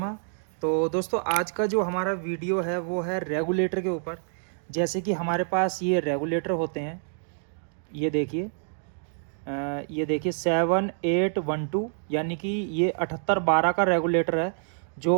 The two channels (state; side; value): silent; left; digital silence